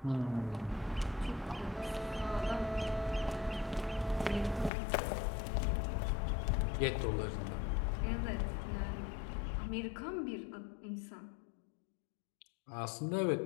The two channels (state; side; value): drops out; right; at 4.7 s